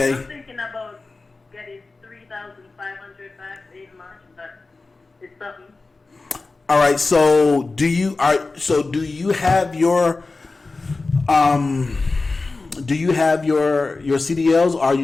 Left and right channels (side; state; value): right; quieter; 3.6 dB